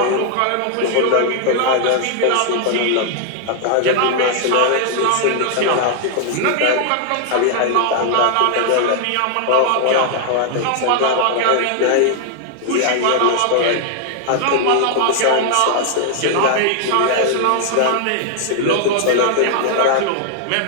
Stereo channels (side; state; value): both; different; correlation 0.00